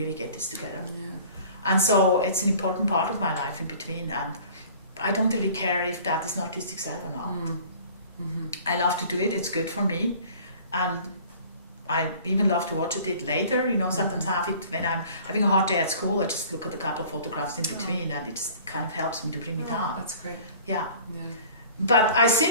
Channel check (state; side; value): inverted; both; correlation -0.48